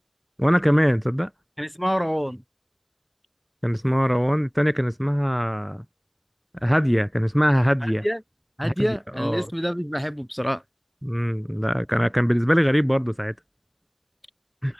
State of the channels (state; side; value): identical; both; correlation 1.00